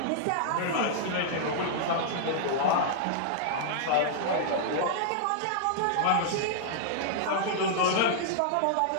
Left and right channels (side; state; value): both; different; correlation -0.02